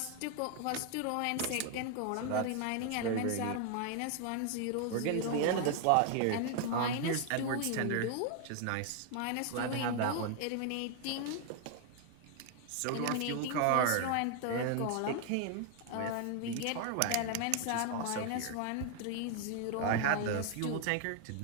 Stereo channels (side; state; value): both; different; correlation 0.00